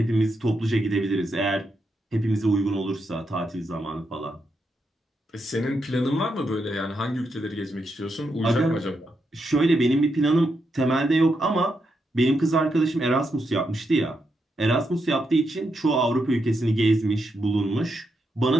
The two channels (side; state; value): both; normal; correlation 0.83